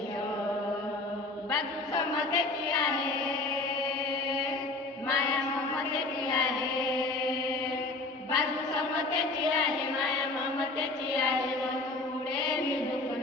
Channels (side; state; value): right; quieter; 3.2 dB